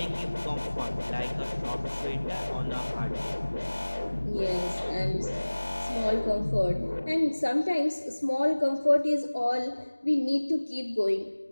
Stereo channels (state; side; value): inverted; both; correlation -1.00